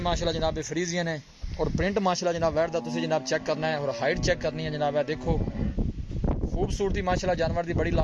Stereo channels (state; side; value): identical; both; correlation 1.00